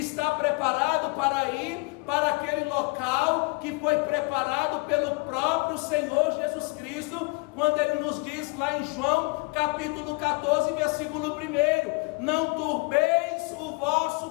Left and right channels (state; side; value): quieter; right; 28.3 dB